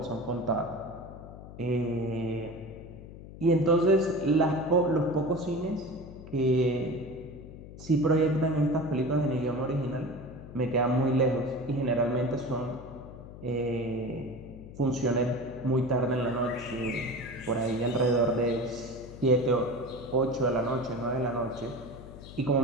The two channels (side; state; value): left; noise; hum, 15 dB below the sound